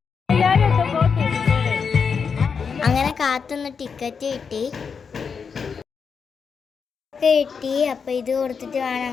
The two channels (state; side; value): quieter; right; 6.0 dB